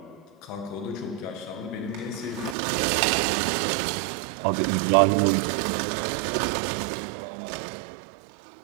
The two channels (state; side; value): drops out; left; at 2.6 s